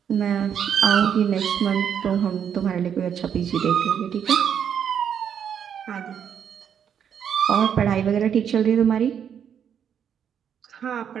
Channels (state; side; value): quieter; left; 8.3 dB